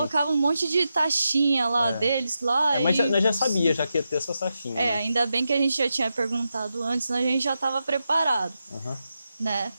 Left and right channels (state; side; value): inverted; both; correlation -0.88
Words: um monte de taxinha lá deles lá. Mas nós já sabia, já que ia ter essas taxinhas. Né? Ainda bem que a gente já tinha perguntado antes, a gente já estava preparado. Né?